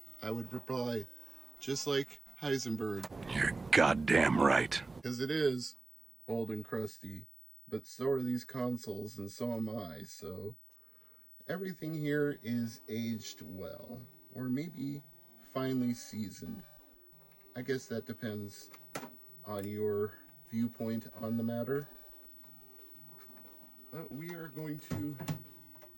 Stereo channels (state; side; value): quieter; left; 3.7 dB